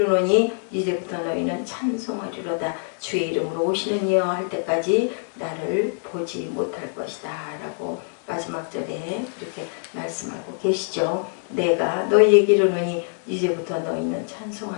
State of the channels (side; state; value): right; silent; 58 dB below the other